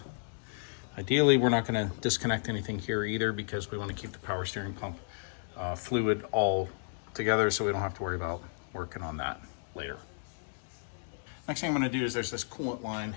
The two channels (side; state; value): right; silent; digital silence